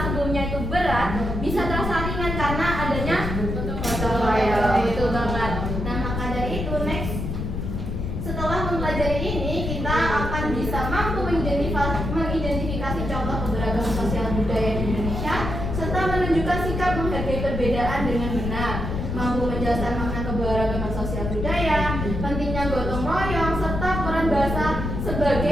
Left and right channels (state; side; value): noise; left; rumble, 3 dB below the sound